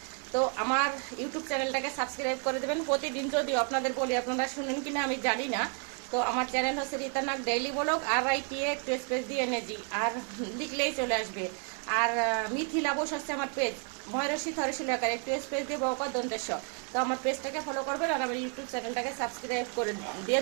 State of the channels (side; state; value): left; quieter; 39.9 dB